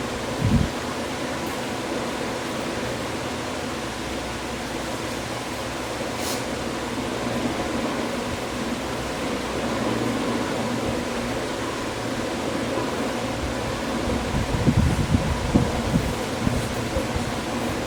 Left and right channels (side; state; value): both; identical; correlation 1.00